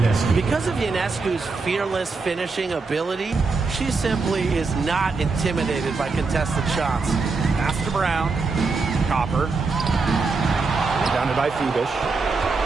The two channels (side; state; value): left; quieter; 4.2 dB